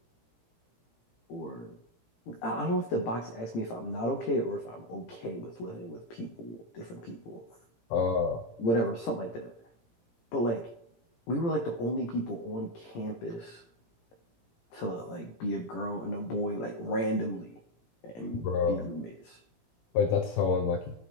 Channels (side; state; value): right; late; 17 ms